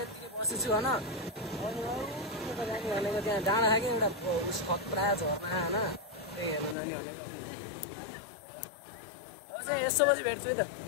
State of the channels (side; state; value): right; drops out; at 6.8 s